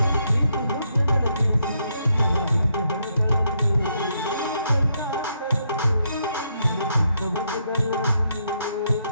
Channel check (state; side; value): inverted; both; correlation -0.77